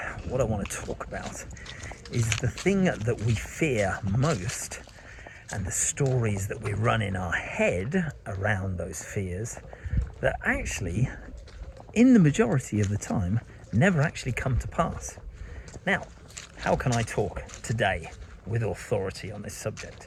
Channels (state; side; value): identical; both; correlation 1.00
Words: what I want to talk about is the thing that we fear most and the stories that we run in our head around those fears that actually, in the majority of the time, never actually come to pass. Now, how can I talk today with authority on this